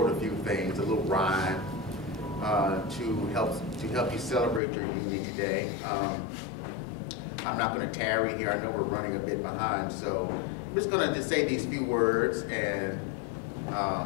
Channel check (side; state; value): right; drops out; at 4.6 s